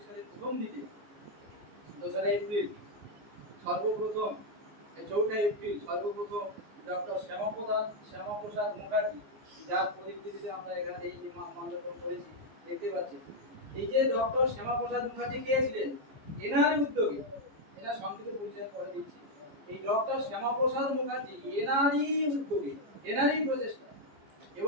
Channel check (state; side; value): late; left; 15 ms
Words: সালের প্রথম দিকে 2রা এপ্রিল সর্বপ্রথম, 4ঠা এপ্রিল সর্বপ্রথম ডক্টর শ্যামাপ্রসাদ মুখার্জি, যার পরিস্থিতিতে আমরা এখানে এই যে মানববন্ধন করেছি দেখতে পাচ্ছি, এই যে ডক্টর শ্যামাপ্রসাদ মুখার্জি কে ছিলেন, এনারই উদ্যোগে, এনার সংক্ষিপ্ত পরিচয় করে দিচ্ছি। এই ডক্টর শ্যামাপ্রসাদ মুখার্জি এনারই উদ্যোগে, এনারই প্রচেষ্টা